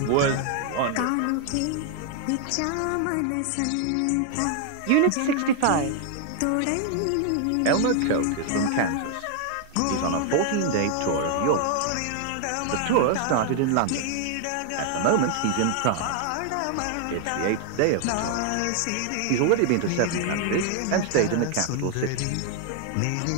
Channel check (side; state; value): both; different; correlation 0.00